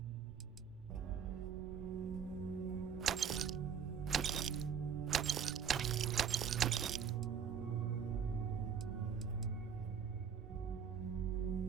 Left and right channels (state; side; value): quieter; left; 7.5 dB